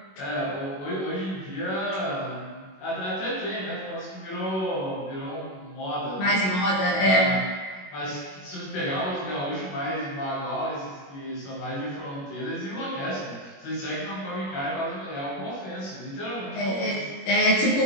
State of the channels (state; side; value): late; right; 21 ms